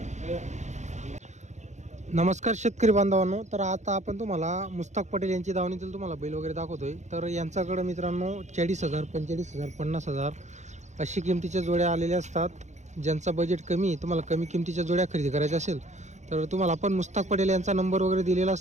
नमस्कार शेतकरी बांधवांनो. तर आता आपण तुम्हाला मुस्ताक पटेल यांची दावणीतील तुम्हाला बैल वगैरे दाखवतोय. तर यांच्याकडे मित्रांनो 40,000 45,000 50,000 अशी किमतीच्या जोड्या आलेल्या असतात. ज्यांचा बजेट कमी आहे तुम्हाला कमी किमतीच्या जोड्या खरेदी करायच्या असेल तर तुम्हाला आपण मुस्ताक पटेल यांचा नंबर वगैरे दिलेला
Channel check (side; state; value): left; late; 0.34 ms